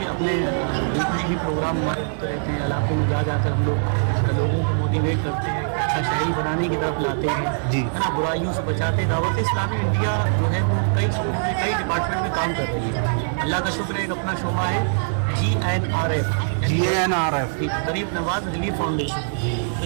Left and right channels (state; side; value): silent; left; 64 dB below the other